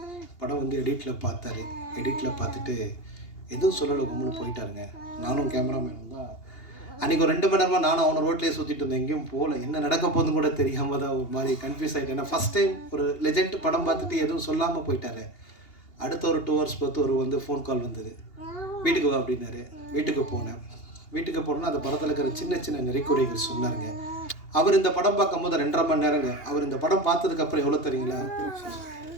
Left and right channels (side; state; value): right; late; 2.8 ms